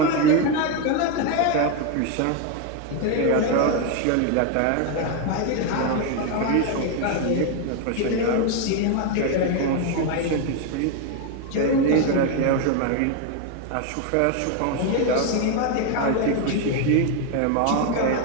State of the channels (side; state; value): both; different; correlation 0.01